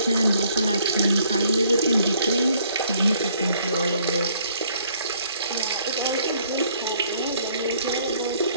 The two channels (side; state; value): both; inverted; correlation -0.63